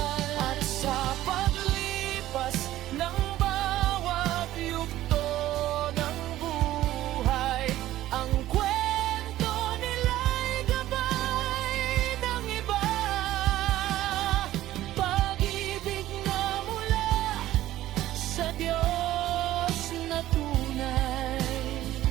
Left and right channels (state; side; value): quieter; left; 14.4 dB